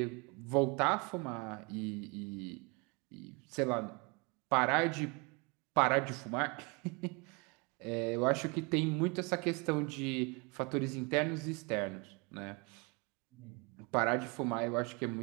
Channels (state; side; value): quieter; left; 30.0 dB